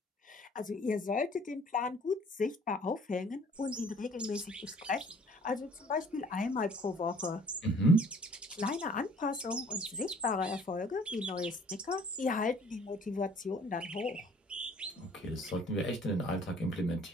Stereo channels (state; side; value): normal; both; correlation 0.55